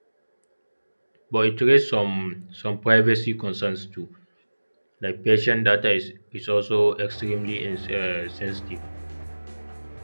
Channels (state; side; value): inverted; both; correlation -1.00